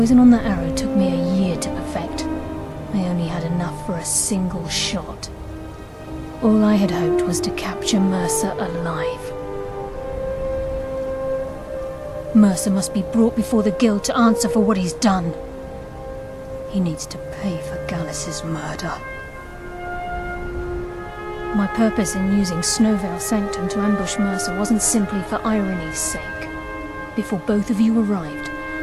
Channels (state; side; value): identical; both; correlation 1.00